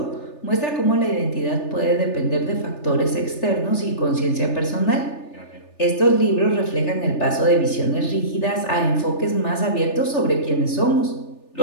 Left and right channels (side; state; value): right; late; 3.3 ms